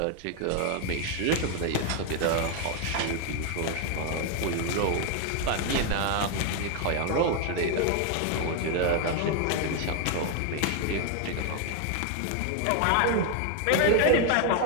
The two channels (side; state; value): both; different; correlation 0.01